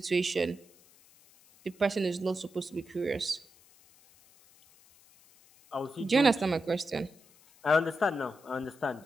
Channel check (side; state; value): left; noise; hiss, 28 dB below the sound